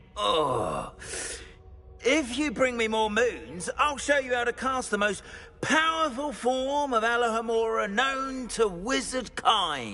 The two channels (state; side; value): identical; both; correlation 1.00